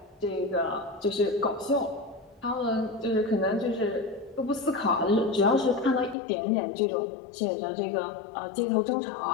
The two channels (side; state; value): right; drops out; at 6.2 s